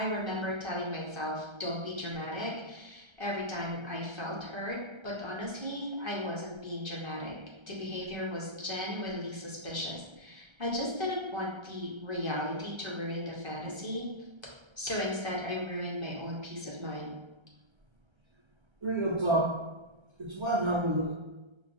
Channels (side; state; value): left; late; 1.3 ms